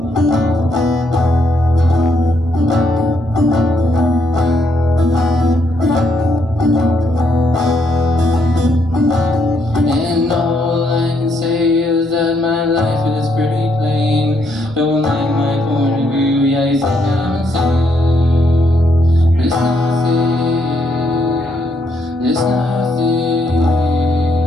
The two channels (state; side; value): normal; both; correlation 0.74